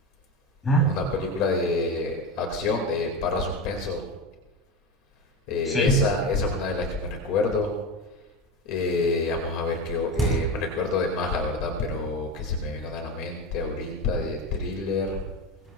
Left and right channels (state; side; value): normal; both; correlation 0.20